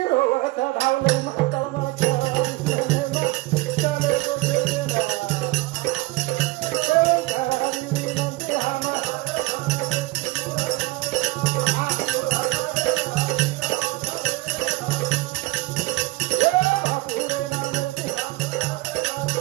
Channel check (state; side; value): quieter; left; 21.5 dB